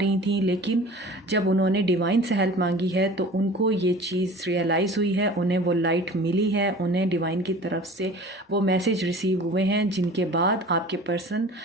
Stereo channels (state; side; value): normal; both; correlation 0.42